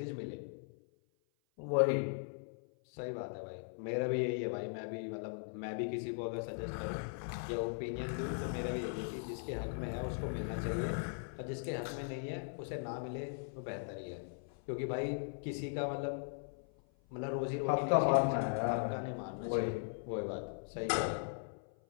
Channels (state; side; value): silent; right; 52 dB below the other